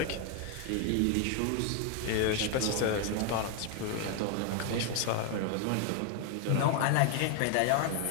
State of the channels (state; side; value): different; both; correlation 0.01